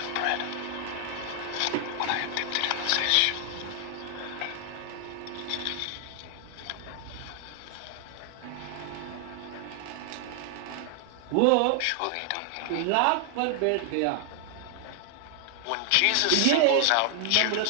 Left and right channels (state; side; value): different; both; correlation 0.00